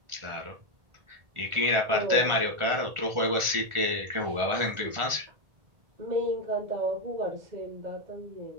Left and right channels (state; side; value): late; left; 1.4 ms